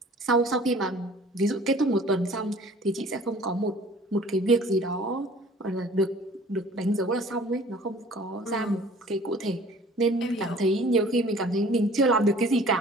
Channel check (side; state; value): both; normal; correlation 0.50